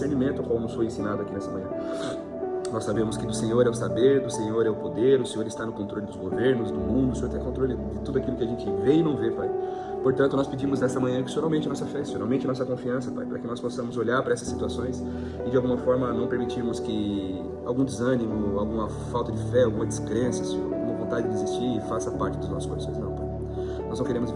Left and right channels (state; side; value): identical; both; correlation 1.00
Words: ao qual nos foi ensinado aqui nessa manhã. Nós sabemos que do Senhor é o saber, do Senhor é o poder, o Senhor está no controle dos governos, do mundo, o Senhor tem controle de tudo aquilo que a gente vê e não vê, Pai. Portanto, nós pedimos nessa manhã que o Senhor aumente a nossa fé, o Senhor aumente a nossa confiança, Pai, para que nós possamos olhar para essas situações e de alguma forma não permitirmos que algum desânimo, alguma falta de fé, alguma descrença, Senhor, alguma vontade de desistir faça parte dos nossos corações, não, Pai. Nós não queremos